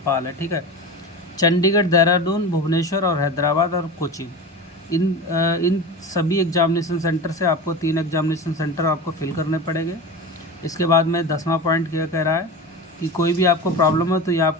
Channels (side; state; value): both; normal; correlation 0.28